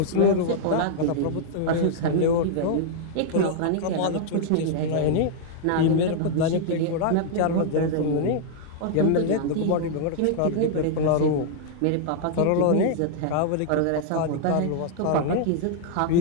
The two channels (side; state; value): both; different; correlation -0.01